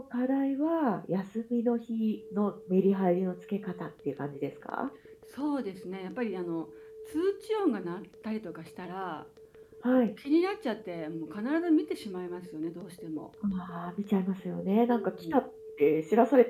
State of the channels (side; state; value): both; identical; correlation 1.00